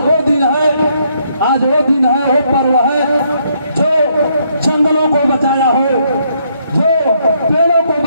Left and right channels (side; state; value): both; inverted; correlation -0.72